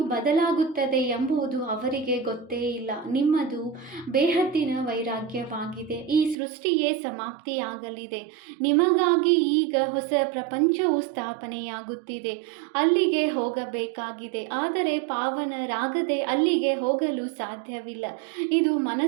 ಬದಲಾಗುತ್ತದೆ ಎಂಬುದು ಅವರಿಗೆ ಗೊತ್ತೇ ಇಲ್ಲ. ನಿಮ್ಮದು ಬೇಹದ್ದಿನ ವೈರಾಗ್ಯವಾಗಿದೆ. ಈ ಸೃಷ್ಟಿಯೇ ಸಮಾಪ್ತಿಯಾಗಲಿದೆ. ನಿಮಗಾಗಿ ಈಗ ಹೊಸ ಪ್ರಪಂಚವು ಸ್ಥಾಪನೆಯಾಗುತ್ತಿದೆ. ಅಲ್ಲಿಗೆ ಹೋಗಬೇಕಾಗಿದೆ, ಆದರೆ ಪಾವನರಾಗದೆ ಅಲ್ಲಿಗೆ ಹೋಗಲು ಸಾಧ್ಯವಿಲ್ಲ. ಇದು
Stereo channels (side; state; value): left; drops out; at 6.4 s